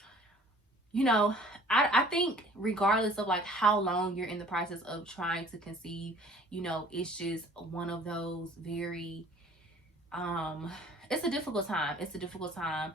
you know, I think regardless of like how long you're in the process of trying to conceive, it's just one of those very it's a difficult time. It's a difficult time.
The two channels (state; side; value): normal; both; correlation 0.51